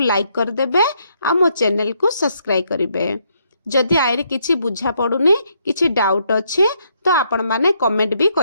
कर देबे आ मो चैनल को सब्सक्राइब करिवे। जदि आइरे किछि बुझा पडुनी किछि डाउट अछि तो आपण माने कमेंट भी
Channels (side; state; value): both; inverted; correlation -0.74